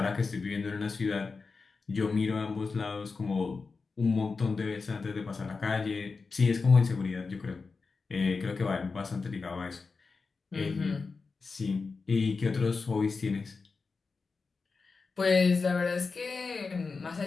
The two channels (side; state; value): right; quieter; 4.5 dB